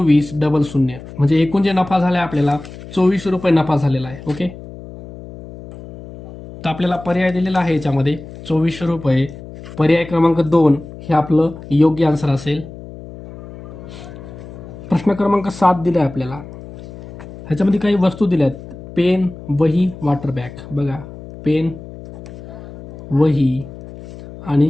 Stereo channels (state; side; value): noise; left; hum, 15 dB below the sound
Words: 00. म्हणजे एकूण जे नफा झाला आहे आपल्याला 24 रुपये नफा झालेला आहे. ओके. तर आपल्याला पर्याय दिलेला आहे याच्यामध्ये 24 रुपये. पर्याय क्रमांक 2 हे आपलं योग्य आन्सर असेल. प्रश्न क्रमांक 7 दिला आहे आपल्याला. ह्याच्यामध्ये काही वस्तू दिल्या आहेत. पेन, वही, वॉटर बॅग. बघा पेन, वही